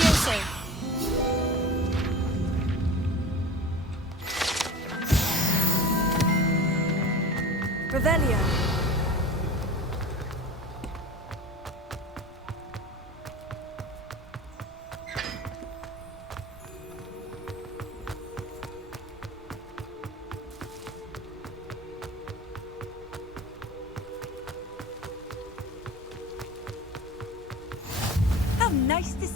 Revelio. How nice to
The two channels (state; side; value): normal; both; correlation 0.36